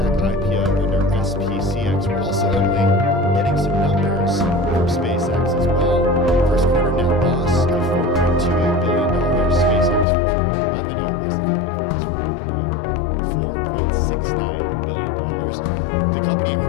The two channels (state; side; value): drops out; right; at 10.1 s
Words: IPO under SPCX. We're also, Emily, getting some numbers from SpaceX as well. First quarter net loss of $4.28 billion. SpaceX first quarter revenue as the company files for IPO, $4.69 billion. The company,